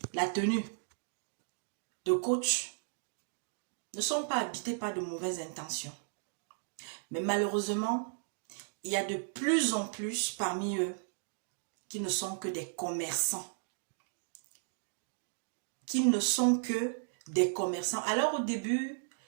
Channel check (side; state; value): left; silent; digital silence